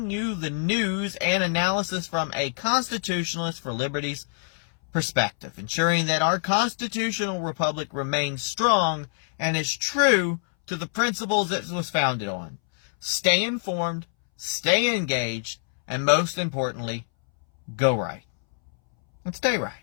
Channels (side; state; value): right; silent; 61 dB below the other